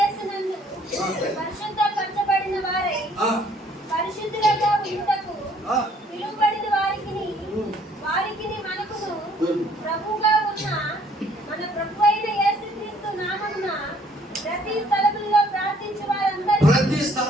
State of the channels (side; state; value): both; normal; correlation 0.61